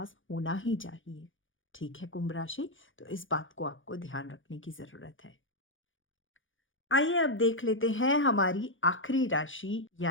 होना ही चाहिए। ठीक है कुंभ राशि, तो इस बात को आपको ध्यान रखने की ज़रूरत है। आइए अब देख लेते हैं हमारी आखिरी राशि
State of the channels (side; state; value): right; late; 0.57 ms